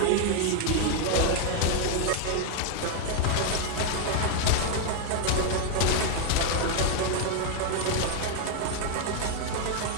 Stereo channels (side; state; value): both; different; correlation 0.00